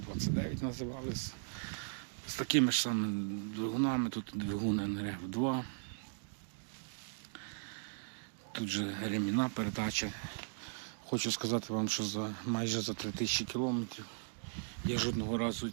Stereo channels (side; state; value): left; silent; digital silence